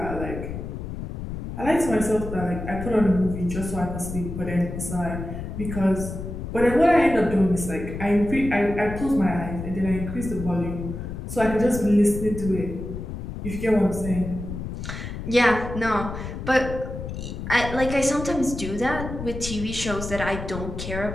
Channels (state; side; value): noise; left; rumble, 7 dB below the sound